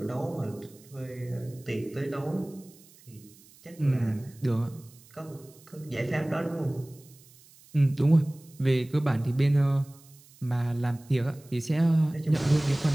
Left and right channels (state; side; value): noise; right; hiss, 25 dB below the sound